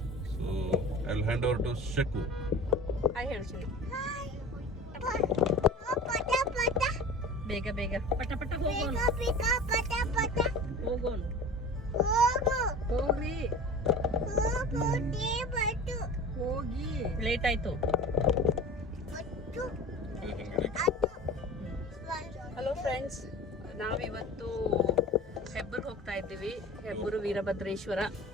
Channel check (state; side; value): normal; both; correlation 0.37